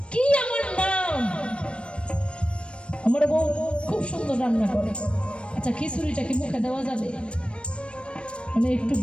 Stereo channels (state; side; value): late; right; 0.058 ms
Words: কি আমার নাম, আমার বউ খুব সুন্দর রান্না করে। আচ্ছা খিচুড়িটা কি মুখে দেওয়া যাবে? মানে একটু